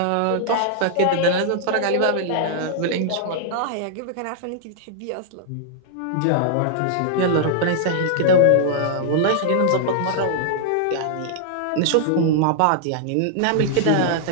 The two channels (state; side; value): different; both; correlation -0.01